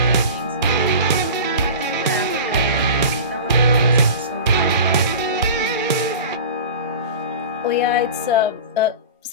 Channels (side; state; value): both; inverted; correlation -0.34